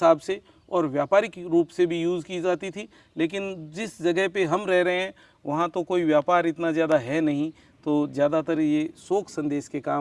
से और व्यापारिक रूप से भी यूज़ की जाती थी। लेकिन जिस जगह पे हम रह रहे हैं वहाँ तो कोई व्यापार इतना ज़्यादा है नहीं, तो ज़्यादातर ये शोक संदेश के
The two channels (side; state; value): both; identical; correlation 1.00